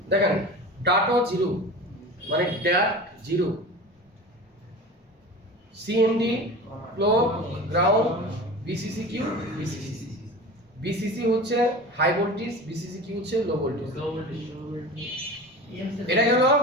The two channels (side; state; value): both; normal; correlation 0.33